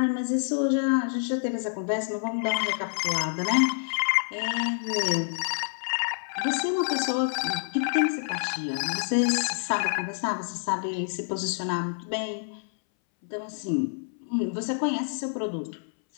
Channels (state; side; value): silent; right; 60 dB below the other